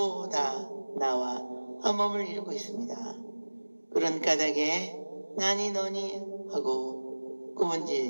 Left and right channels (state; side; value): inverted; both; correlation -1.00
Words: 다 나와 한 몸을 이루고 있습니다. 그런 까닭에 나니 너니 하고